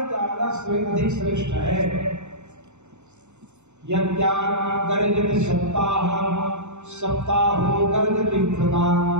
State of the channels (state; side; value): late; left; 0.83 ms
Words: ज्यादा अधिक श्रेष्ठ है। यज्ञा गर्जति सप्ताह सप्ताहो गर्जति प्रदा